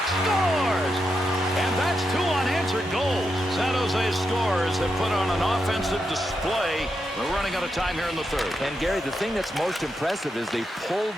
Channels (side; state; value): both; normal; correlation 0.85